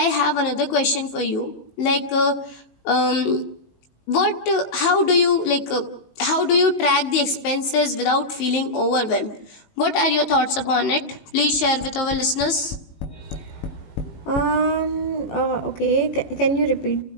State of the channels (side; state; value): right; late; 19 ms